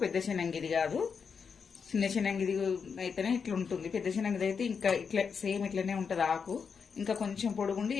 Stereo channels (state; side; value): quieter; right; 6.1 dB